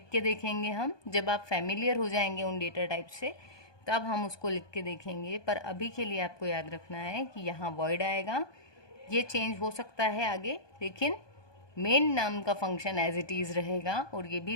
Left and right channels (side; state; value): right; late; 1.2 ms